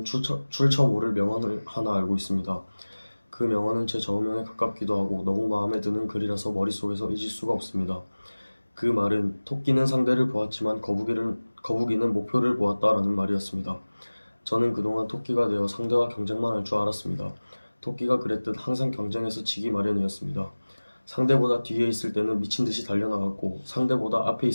출처모를 명언을 하나 알고 있습니다. 그 명언은 제 좌우명에 가깝기도 하고 너무 마음에 드는 글이라서 머릿속에서 잊을 수가 없습니다. 그 말은 토끼는 상대를 보았지만 거북이는 목표를 보았다라는 말이었습니다. 저는 그동안 토끼가 되어 상대와 경쟁만 할 줄 알았습니다. 토끼가 그랬듯 항상 경쟁에서 지기 마련이었습니다. 상대보다 뒤에 있을 때는 미친 듯이 달려나갔고 상대보다 앞에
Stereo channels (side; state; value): both; inverted; correlation -1.00